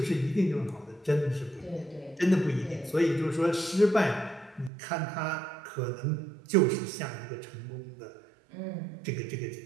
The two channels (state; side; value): drops out; left; at 4.7 s